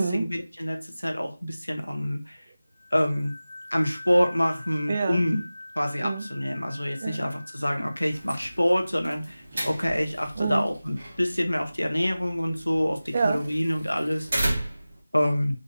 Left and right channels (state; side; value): inverted; both; correlation -0.97